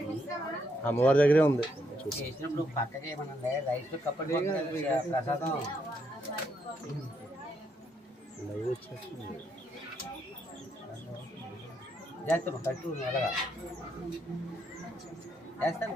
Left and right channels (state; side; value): normal; both; correlation 0.76